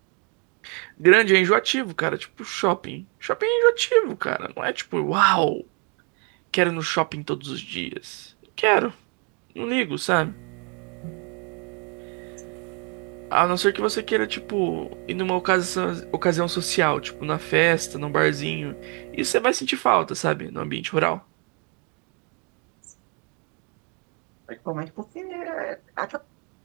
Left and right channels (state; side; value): quieter; left; 36.6 dB